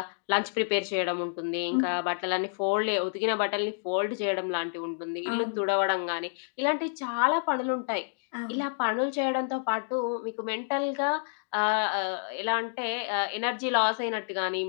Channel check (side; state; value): right; silent; digital silence